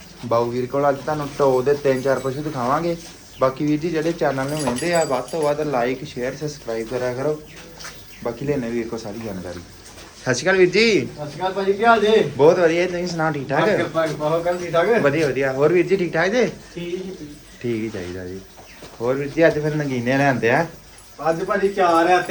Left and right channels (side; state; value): both; identical; correlation 1.00